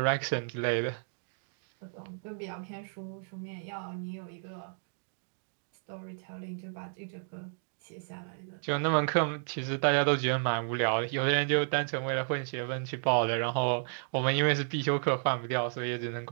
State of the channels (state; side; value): silent; left; digital silence